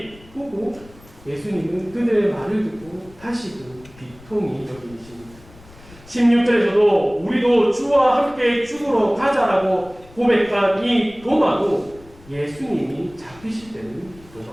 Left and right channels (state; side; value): noise; left; rumble, 23 dB below the sound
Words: 보고 예수님은 그들의 말을 듣고 다시금 비통히 여기십니다. 16절에서도 우리도 주와 함께 죽으러 가자라고 고백한 이 도마도 예수님이 잡히실 때는